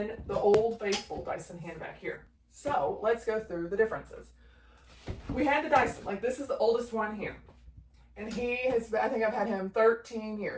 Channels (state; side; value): identical; both; correlation 1.00